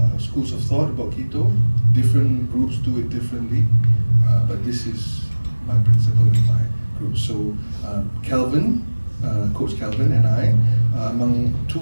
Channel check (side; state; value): both; inverted; correlation -1.00